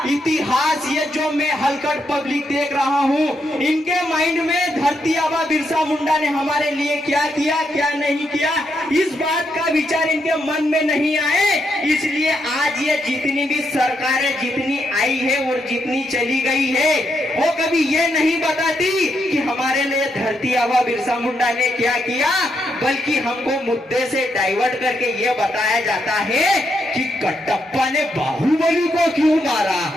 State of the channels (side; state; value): both; normal; correlation 0.80